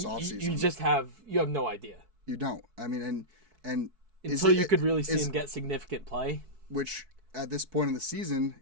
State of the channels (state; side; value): late; left; 4.6 ms